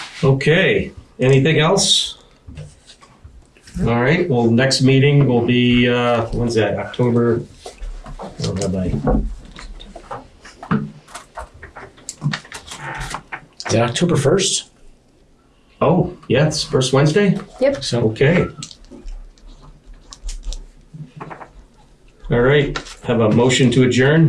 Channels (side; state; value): both; identical; correlation 1.00